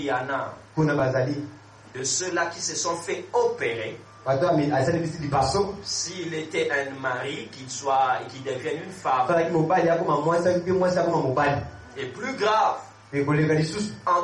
y en a de ceux-là qui se sont fait opérer. S'il était un mari, qu'il devienne une femme. Et plus grave, en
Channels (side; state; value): both; identical; correlation 1.00